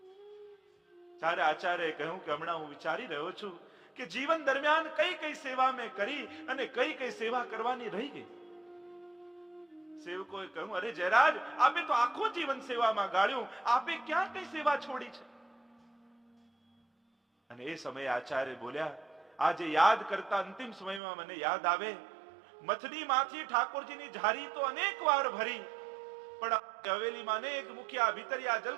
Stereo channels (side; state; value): left; drops out; at 21.0 s